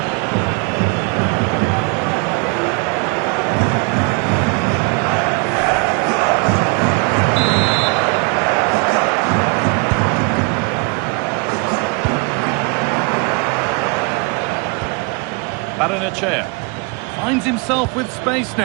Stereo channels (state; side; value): quieter; left; 29.6 dB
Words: Chair finds himself with space